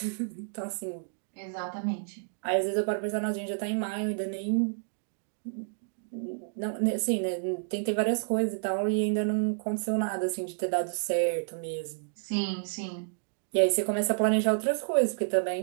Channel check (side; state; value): left; silent; digital silence